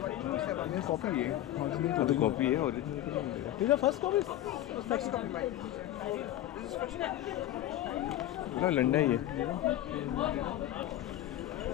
कॉपी है। तो कॉपी है, original This is the first copy? ना लंडा ही है।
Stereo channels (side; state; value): right; quieter; 13.4 dB